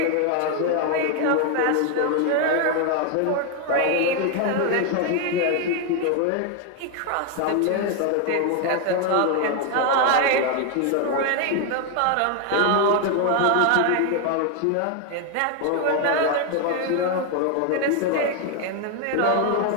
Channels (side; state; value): both; different; correlation 0.01